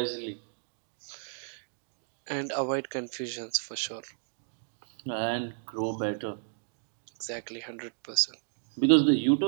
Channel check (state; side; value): silent; left; digital silence